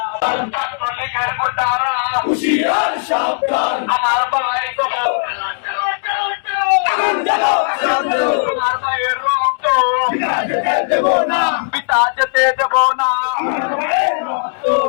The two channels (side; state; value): right; silent; digital silence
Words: ছাত্রলীগের গুন্ডারা, হুঁশিয়ার সাবধান, আমার ভাই কবর, আমার ভাইয়ের রক্ত, দেব না, পিতা যেতে দেব না, আমার ভাইয়ের রক্ত,